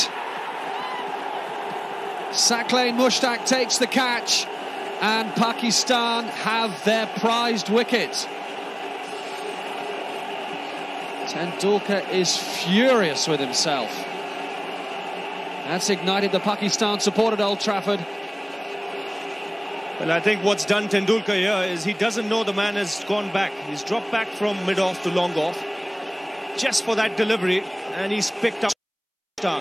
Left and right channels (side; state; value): both; identical; correlation 1.00